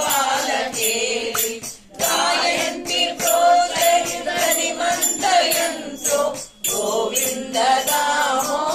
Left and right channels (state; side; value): identical; both; correlation 1.00